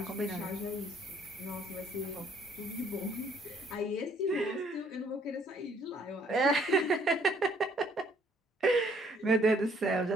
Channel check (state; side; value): normal; both; correlation 0.64